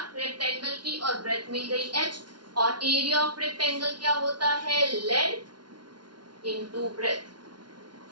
रेक्टेंगल की, और ब्रेथ मिल गई h, और एरिया ऑफ रेक्टेंगल क्या होता है? Length into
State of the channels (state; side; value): late; left; 0.71 ms